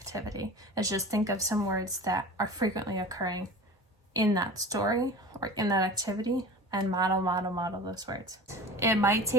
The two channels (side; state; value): both; normal; correlation 0.36